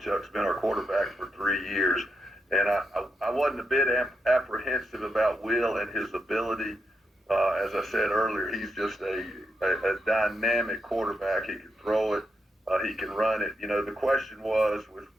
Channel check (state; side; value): normal; both; correlation 0.83